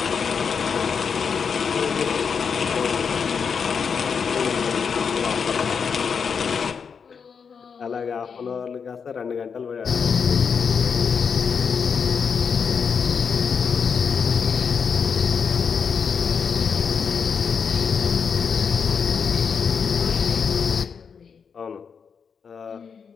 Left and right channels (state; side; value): quieter; right; 6.2 dB